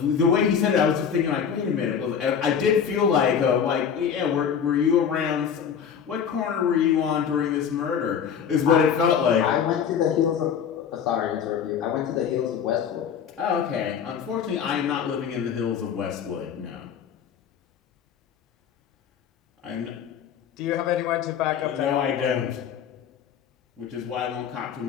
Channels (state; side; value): quieter; right; 7.7 dB